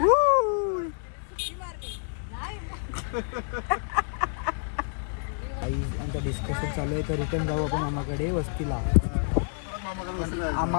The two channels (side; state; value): right; silent; 58 dB below the other